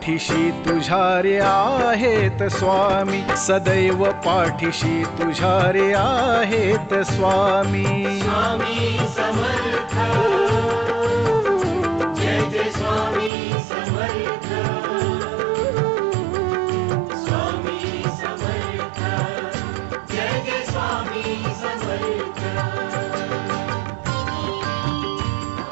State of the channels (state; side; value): drops out; left; at 13.3 s